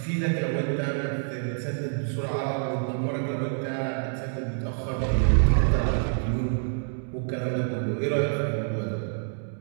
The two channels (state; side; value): silent; left; digital silence